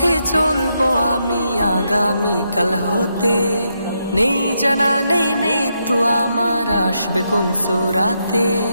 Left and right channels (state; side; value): inverted; both; correlation -0.81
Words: চলবো আমি আগামীকাল হতে, নেই জানা নেই মৃত্যু আমার আসবে কোন সুরাতে।